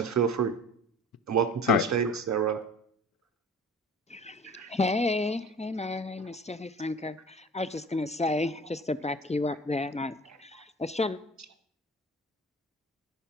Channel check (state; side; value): normal; both; correlation 0.41